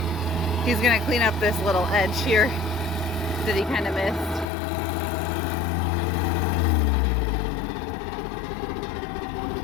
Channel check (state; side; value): drops out; right; at 4.5 s